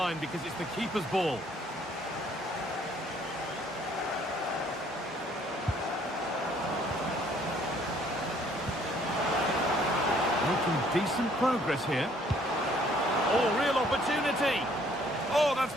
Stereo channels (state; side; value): normal; both; correlation 0.62